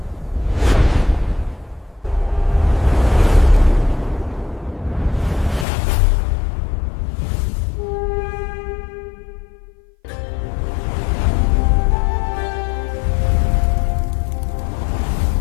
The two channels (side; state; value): right; drops out; at 5.7 s